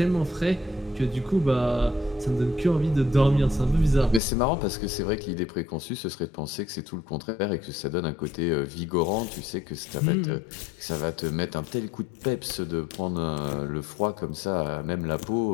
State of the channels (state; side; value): drops out; right; at 4.2 s